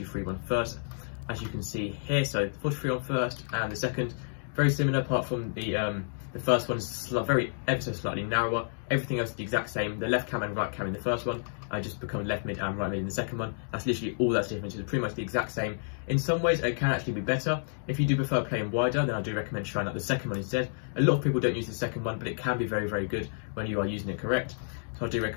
first, as you can see here. So 4-2-3-1 first and the second, very similar apart from the first one is ever so slightly narrower. Everything else is the exact same. The left cam and right cam in the first one just become left mid and right mid in the second one. That's literally all that's different. It's pretty much the exact same. In some ways it can actually be better. If you do prefer playing wider, then I do recommend trying out the second one instead. A lot of people don't use the second one, but it can be very, very good when you are using it correct. So I do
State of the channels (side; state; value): right; silent; digital silence